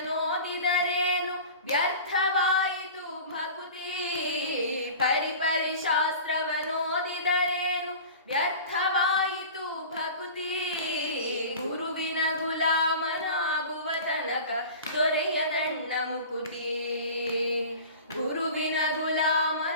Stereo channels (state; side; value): inverted; both; correlation -0.37